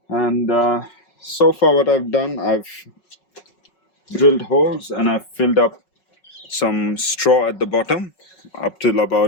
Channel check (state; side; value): late; right; 5.4 ms